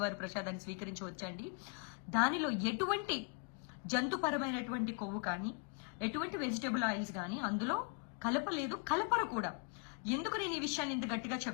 ప్రసాదాన్ని స్వీకరించవచ్చండి. దానిలో ఎటువంటి జంతుపరమైనటువంటి కొవ్వు కానీ, ఎటువంటి వెజిటబుల్ ఆయిల్స్ కానీ అందులో కలపలేదు, కలపరు కూడా. ఎందుకు నేను ఈ విషయాన్ని ఇంత గట్టిగా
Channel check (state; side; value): quieter; right; 33.2 dB